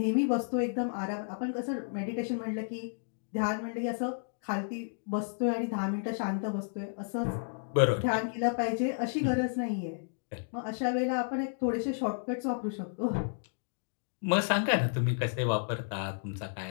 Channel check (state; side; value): silent; right; digital silence